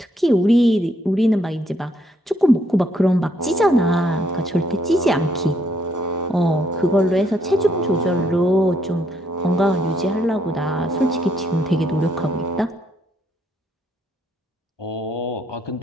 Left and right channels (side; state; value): both; normal; correlation 0.71